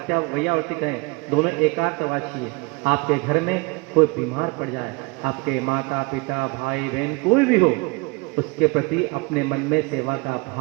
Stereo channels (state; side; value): quieter; left; 27.9 dB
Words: कहें, दोनों एकार्थवाची है। आपके घर में कोई बीमार पड़ जाए, आपके माता पिता भाई बहन कोई भी हो, उसके प्रति अपने मन में सेवा का